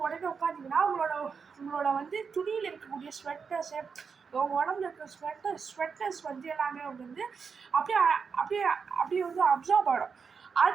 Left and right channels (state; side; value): quieter; left; 5.7 dB